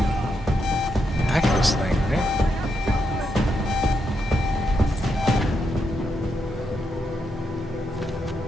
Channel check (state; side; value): normal; both; correlation 0.82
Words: hack this thing, right?